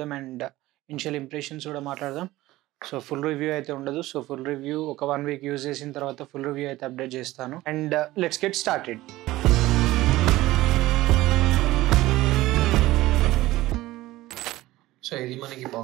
అండ్ ఇనిషియల్ ఇంప్రెషన్స్ కూడా మాట్లాడదాం. సో ఫుల్ రివ్యూ అయితే ఉండదు. సో ఫుల్ రివ్యూ ఒక 1 వీక్ యూజ్ చేసిన తర్వాత ఫుల్ రివ్యూ అయితే అప్డేట్ చేస్తాను. And let's get started. So ఇది మనకి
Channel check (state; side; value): quieter; left; 17.3 dB